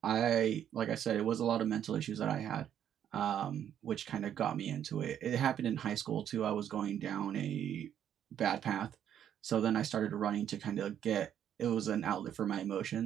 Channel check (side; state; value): left; quieter; 9.8 dB